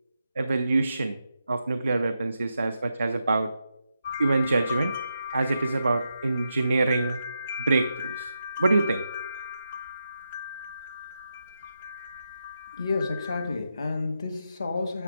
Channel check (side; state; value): both; inverted; correlation -0.85